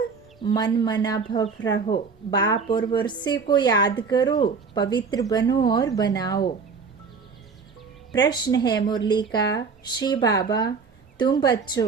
मन मना भव रहो, बाप और वर्षे को याद करो, पवित्र बनो और बनाओ। प्रश्न है मुरली का, श्री बाबा तुम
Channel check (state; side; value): quieter; left; 5.2 dB